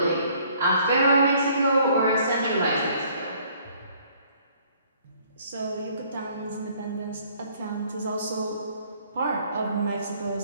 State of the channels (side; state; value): both; inverted; correlation -0.60